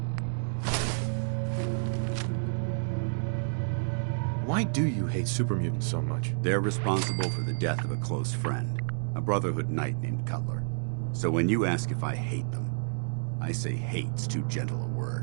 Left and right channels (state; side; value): silent; left; digital silence